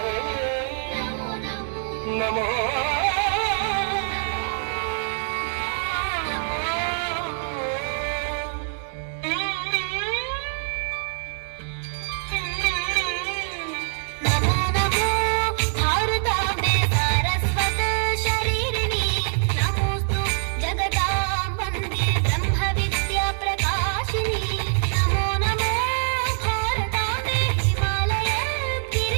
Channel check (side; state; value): left; silent; digital silence